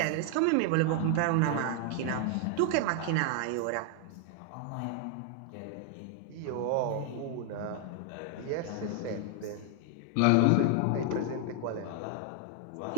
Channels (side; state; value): both; different; correlation 0.00